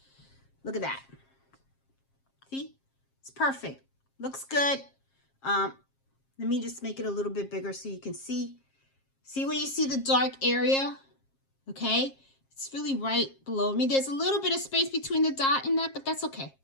Look at that. See, it's perfect. Looks good. Let me just make it a little bit bigger so you can see. See where you see the dark area? Okay, it's really right below me. There's a little bit of space between the dot and that, but that's okay.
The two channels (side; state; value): right; late; 7.5 ms